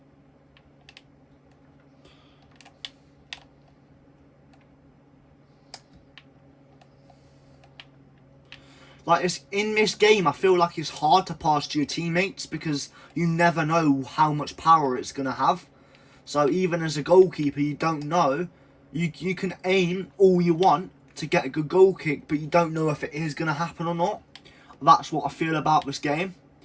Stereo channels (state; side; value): identical; both; correlation 1.00